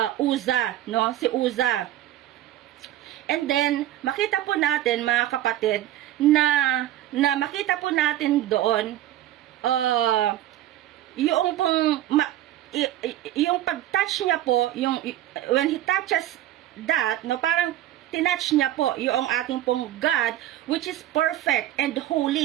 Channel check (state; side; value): quieter; left; 13.3 dB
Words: Uza, no? Si Uza. And then, makita po natin, mga kapatid, na makita po natin doon, yung pong, yung pag-touch niya po, when he touches that, no, parang tinouch niya po yung ating pong God, which is perfect and